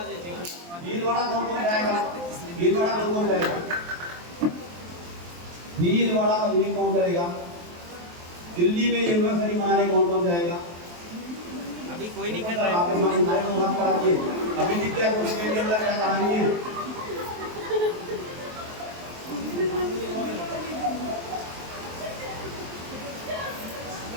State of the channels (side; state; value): left; late; 23 ms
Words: भीलवाड़ा कौन जाएगा? भीलवाड़ा कौन जाएगा? भीलवाड़ा का मीटिंग कौन करेगा? दिल्ली में यूनिवर्सिटी मनाने कौन जाएगा? अभी कोई नहीं कर रहा है। अभी दिख गया कुछ के अंदर क्या कहानी है?